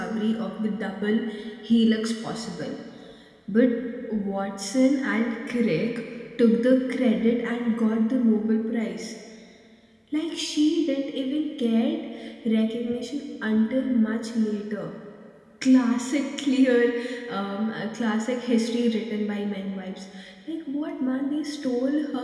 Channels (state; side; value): identical; both; correlation 1.00